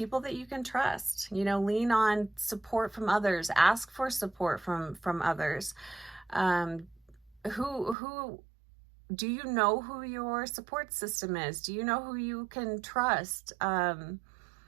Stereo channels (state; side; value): drops out; left; at 8.0 s